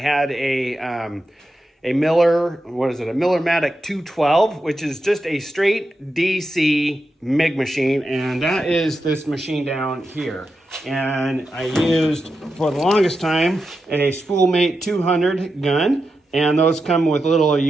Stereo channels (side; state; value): both; normal; correlation 0.89